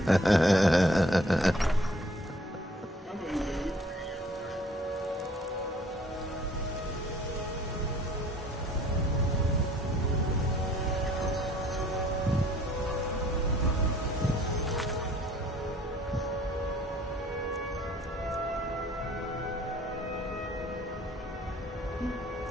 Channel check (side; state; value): both; normal; correlation 0.57